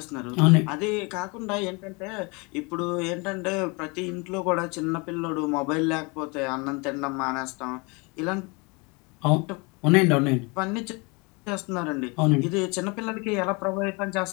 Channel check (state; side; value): quieter; right; 29.0 dB